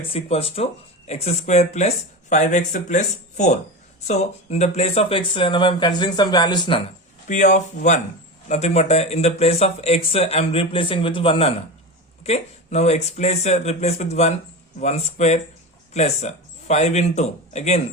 equals to x square plus 5x plus 4. So in the place of x now I am considering some values nana. P of 1 nothing but in the place of x I am replacing with 1 nana. Okay, now x place replace with 1 square plus 5 into again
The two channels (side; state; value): both; normal; correlation 0.24